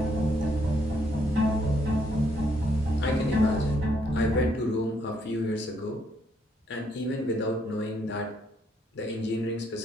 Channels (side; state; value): both; normal; correlation 0.72